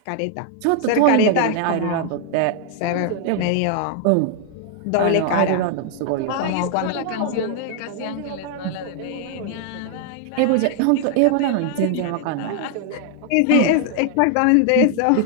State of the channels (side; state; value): both; different; correlation 0.00